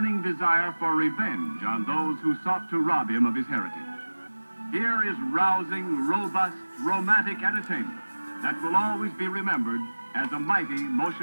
desire for revenge on those who sought to rob him of his heritage. Here is rousing, robust, romantic entertainment that will always be remembered as a mighty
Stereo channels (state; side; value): inverted; both; correlation -1.00